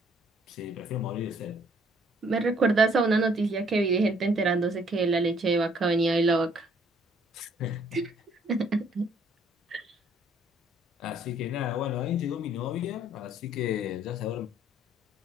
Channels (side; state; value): both; normal; correlation 0.63